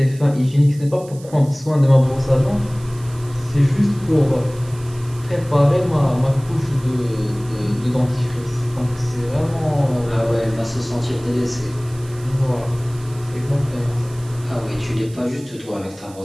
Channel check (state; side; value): noise; right; hiss, 22 dB below the sound